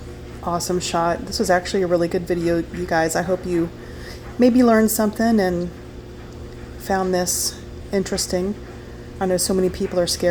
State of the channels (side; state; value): both; identical; correlation 1.00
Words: Awesome shot. This was actually a really good video, you guys. I hope you maybe learned something and found this interesting. I know so many people are